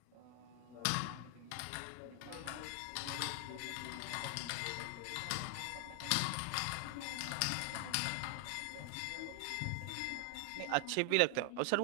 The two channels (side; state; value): both; different; correlation 0.00